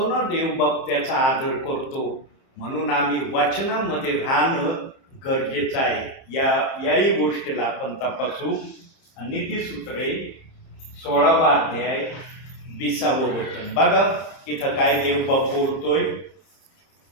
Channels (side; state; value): right; late; 30 ms